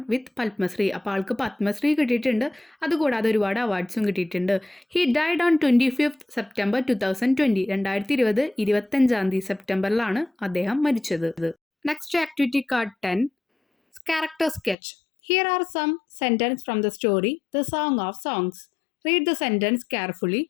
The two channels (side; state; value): right; drops out; at 14.8 s